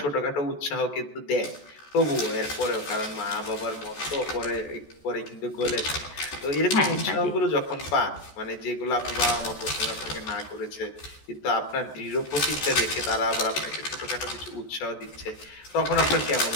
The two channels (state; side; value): late; right; 14 ms